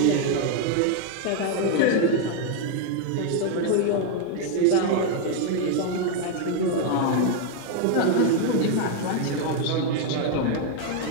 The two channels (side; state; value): both; different; correlation 0.01